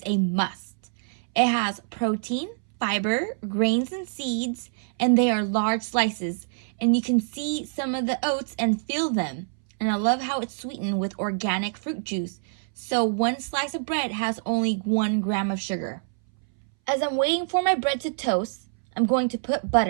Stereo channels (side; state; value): left; silent; 61 dB below the other